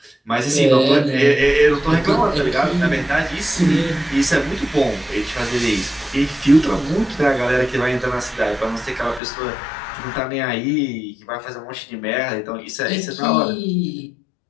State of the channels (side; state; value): right; drops out; at 9.2 s